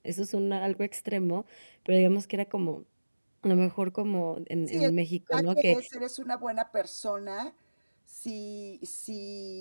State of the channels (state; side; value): inverted; both; correlation -1.00